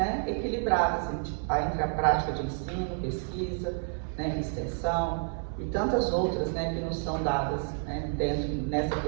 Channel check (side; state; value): left; silent; 56 dB below the other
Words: equilibradas entre a prática de ensino, pesquisa, né, extensão e tantas outras, né, que nos são dadas, né, nessa